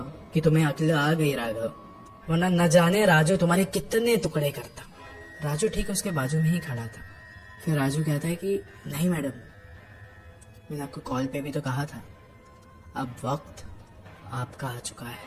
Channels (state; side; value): identical; both; correlation 1.00